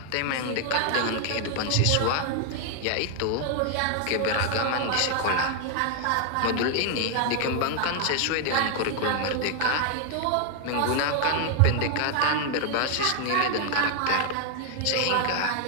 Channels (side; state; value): both; different; correlation 0.00